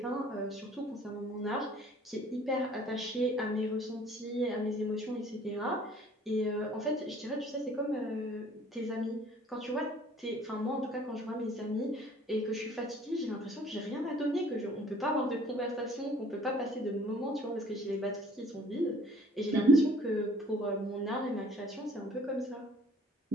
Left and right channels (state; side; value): normal; both; correlation 0.55